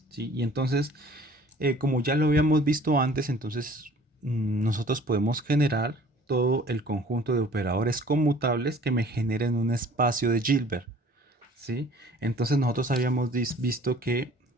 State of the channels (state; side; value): normal; both; correlation 0.52